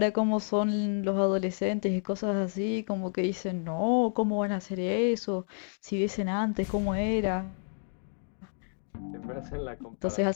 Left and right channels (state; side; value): silent; right; digital silence